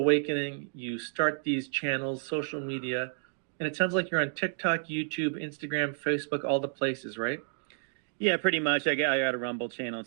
you start these channels, social media, and it sounds like you're on TikTok, YouTube, Instagram, Facebook, all the places, right? Yeah, pretty much. I got a Rumble channel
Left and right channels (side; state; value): left; silent; digital silence